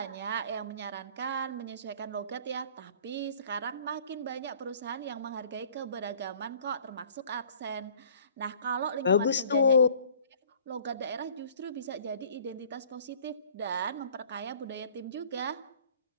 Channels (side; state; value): both; inverted; correlation -0.51